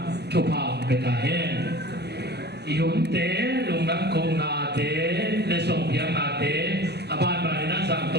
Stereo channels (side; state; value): left; late; 0.48 ms